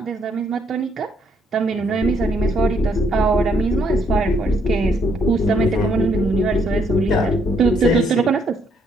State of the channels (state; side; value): normal; both; correlation 0.71